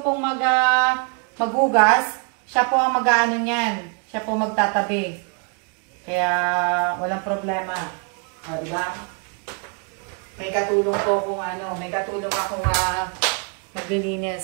pong maghugas, siya po ang mag-ano niyan. Siya po magtatabi. Kaya, walang problema. O, diba? May katulong po kung may katulong akong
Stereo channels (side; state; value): left; quieter; 38.0 dB